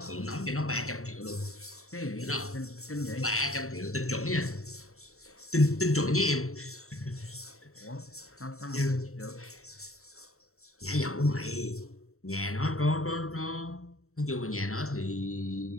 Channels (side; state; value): right; late; 0.63 ms